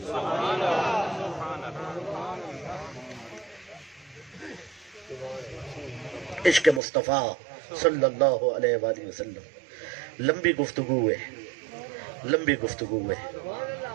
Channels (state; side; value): drops out; left; at 6.8 s